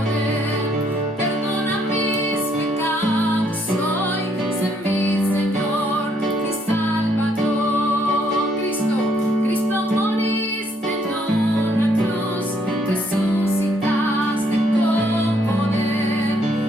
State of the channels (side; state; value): both; normal; correlation 0.69